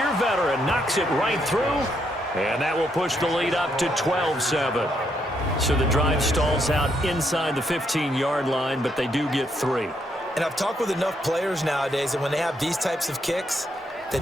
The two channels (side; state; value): both; normal; correlation 0.76